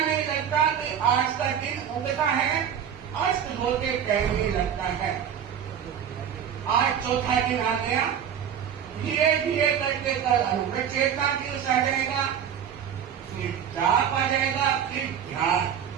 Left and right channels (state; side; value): quieter; left; 8.6 dB